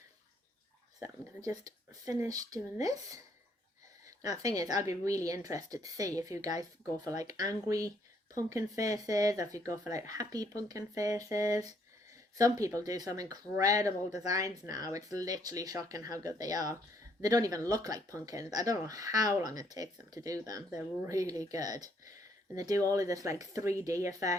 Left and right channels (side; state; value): both; normal; correlation 0.69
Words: So I'm going to just finish doing this. Now the thing is, I'd be really interested to see if you guys go for like angry pumpkin faces, or if you go for like happy pumpkin faces. Some people do some incredible designs now. It's literally shocking how good they are. They don't even look like pumpkins. I don't know how long it takes them to do them. They're really good. And they do all of this like 3D